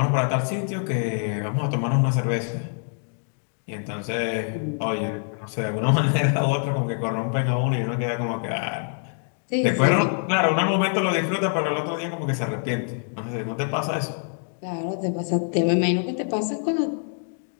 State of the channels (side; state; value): right; silent; digital silence